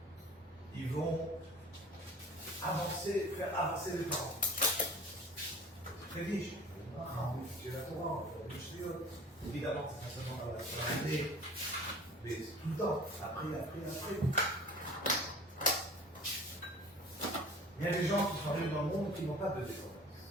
ils vont avancer, faire avancer les parents. C'est très riche. J'ai la Torah, évidemment, c'est pas seulement dans la l'année, mais tout le temps, après. Il y a des gens qui sont arrivés dans le monde qui n'ont pas de descendance.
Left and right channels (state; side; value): normal; both; correlation 0.43